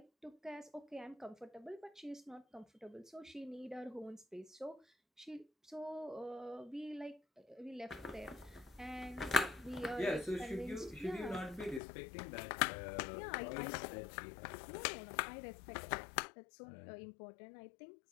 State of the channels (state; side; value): drops out; right; at 11.8 s